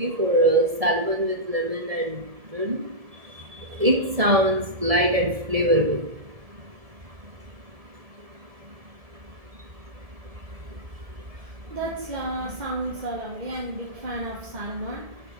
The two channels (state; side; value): late; left; 1.7 ms